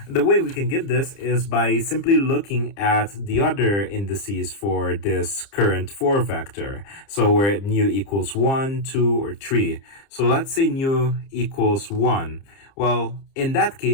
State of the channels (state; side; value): late; right; 30 ms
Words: the way we can get this is by simply looking at the other indices for this current 4 vector. So where nu equals 1, 2, or 3. So let's say nu equals 1. Well, in that